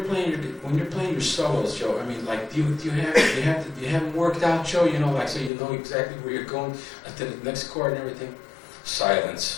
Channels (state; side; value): drops out; right; at 5.5 s